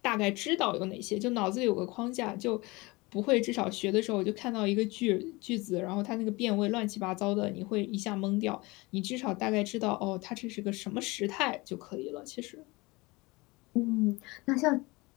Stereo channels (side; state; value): right; quieter; 23.6 dB